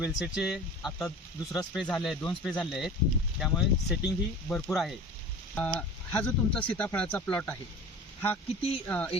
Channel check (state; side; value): normal; both; correlation 0.39